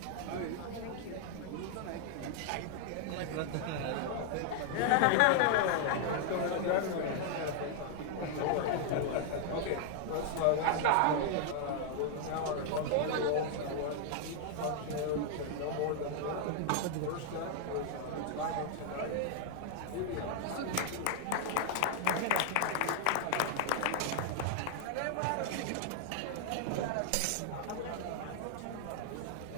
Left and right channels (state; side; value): different; both; correlation 0.00